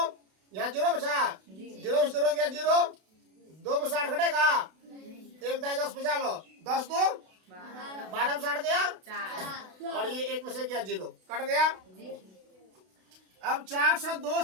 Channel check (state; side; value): late; left; 32 ms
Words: यहाँ 0 बचा, 0 में 0 गया 0, 2 में 60 घटेगा, 1 दाई 10 बचा लो, 10 2 12 में 60 गया, और ये 1 में से गया 0, कट गया। अब 402